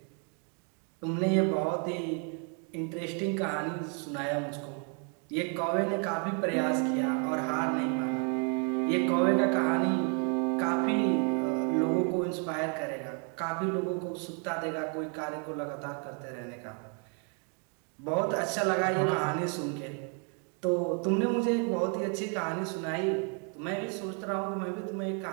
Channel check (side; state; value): left; quieter; 39.6 dB